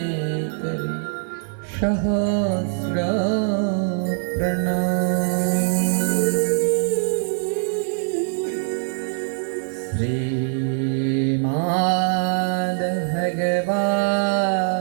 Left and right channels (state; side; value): silent; left; digital silence